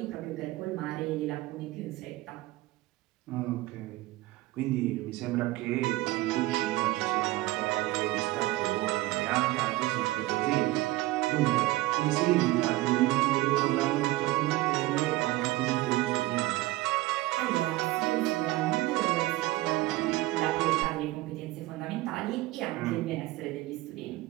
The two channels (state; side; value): quieter; left; 18.5 dB